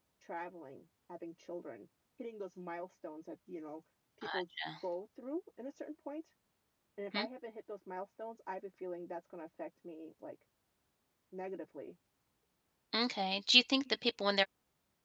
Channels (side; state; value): both; identical; correlation 1.00